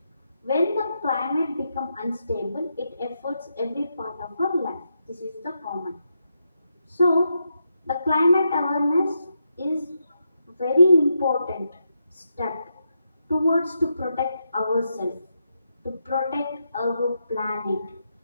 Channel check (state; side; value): inverted; both; correlation -0.83